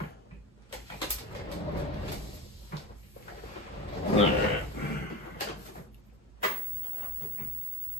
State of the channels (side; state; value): both; normal; correlation 0.36